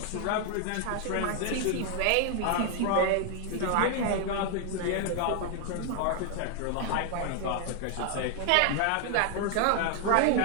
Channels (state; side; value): different; both; correlation 0.00